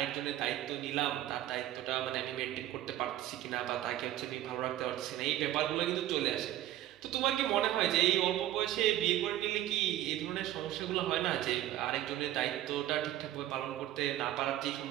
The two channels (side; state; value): left; quieter; 13.6 dB